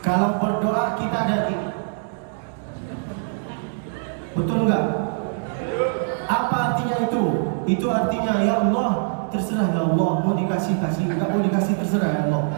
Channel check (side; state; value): left; silent; digital silence